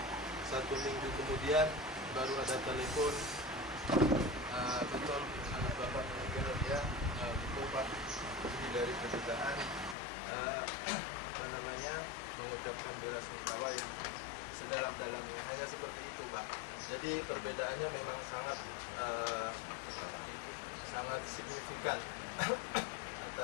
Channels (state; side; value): drops out; right; at 10.0 s